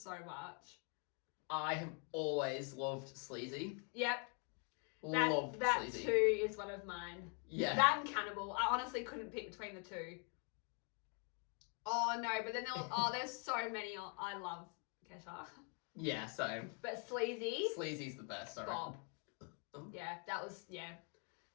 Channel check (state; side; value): quieter; right; 38.7 dB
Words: much. I have always loved Sleazy. Yep. Loved that Sleazy. too is one of mine. Yeah. That and Cannibal. I honestly couldn't pick between the two. Oh no, but then there's so many. I love Kesha. Yeah, same. But Sleazy's the best, I Bob. reckon. Yeah,